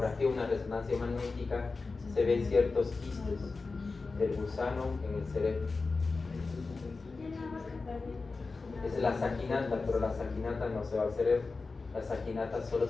una resonancia magnética, se ven ciertos quistes del gusano en el cerebro. Es la saquinata, pero la saquinata no se va al cerebro. La saquinata solo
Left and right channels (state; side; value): quieter; right; 4.0 dB